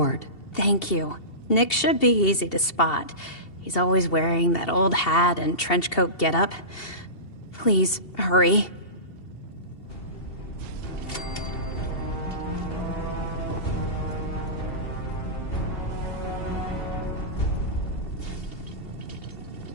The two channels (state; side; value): late; right; 2.7 ms